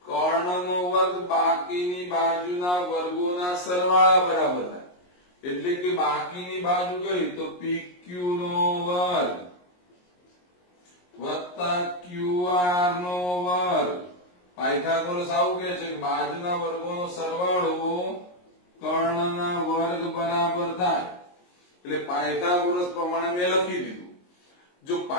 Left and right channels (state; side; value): late; right; 22 ms